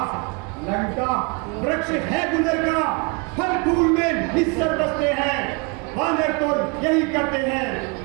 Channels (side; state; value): left; quieter; 31.4 dB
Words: लंका वृक्ष है गुजर का, फल फूल में निस्सर बसते हैं। वानर तो यही करते हैं,